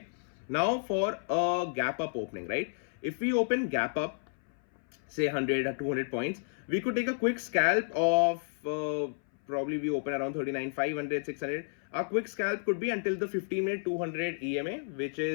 Now for a gap up opening, right? If we open gap up, say 100 or 200 points, we could take a quick scalp of probably we open around 39,500, 600. Our quick scalp could be until the 15-minute 200 EMA, which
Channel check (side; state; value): right; silent; 57 dB below the other